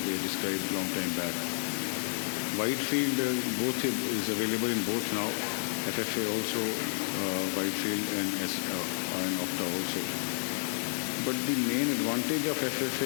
they described long time back. Whitefield both is available in both now, FFA also, Whitefield and OCTA also. But the main advantage of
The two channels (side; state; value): right; silent; 57 dB below the other